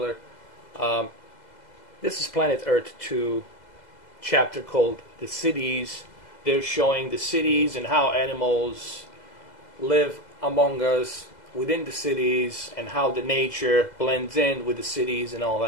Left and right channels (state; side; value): late; right; 2.0 ms